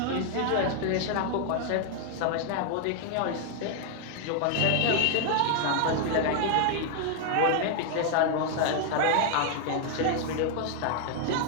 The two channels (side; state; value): both; different; correlation 0.00